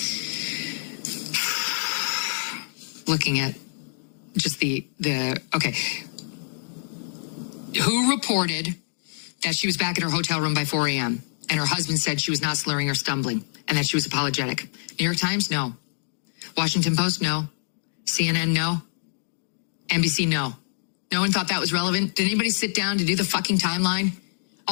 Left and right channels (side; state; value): right; silent; digital silence